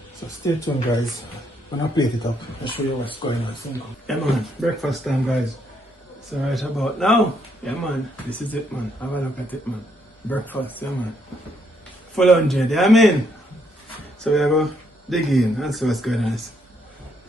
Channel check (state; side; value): normal; both; correlation 0.73